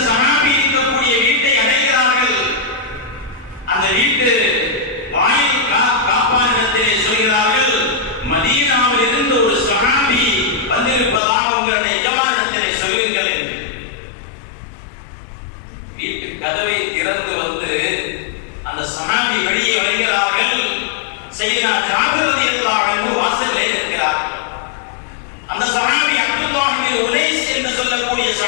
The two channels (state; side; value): drops out; right; at 11.2 s